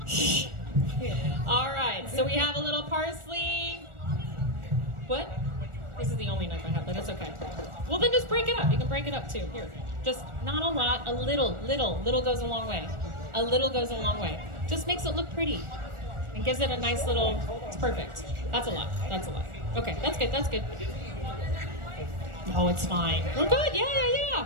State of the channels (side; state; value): left; late; 1.4 ms